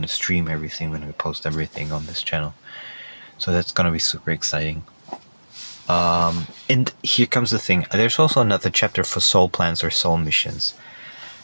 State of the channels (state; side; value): inverted; both; correlation -1.00